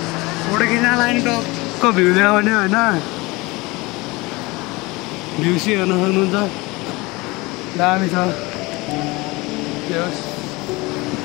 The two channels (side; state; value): right; quieter; 23.3 dB